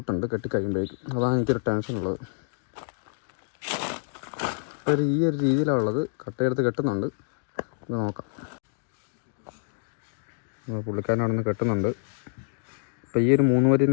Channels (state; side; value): silent; right; digital silence